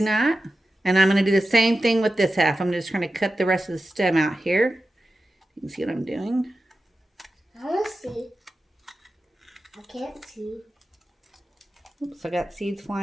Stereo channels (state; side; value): normal; both; correlation 0.93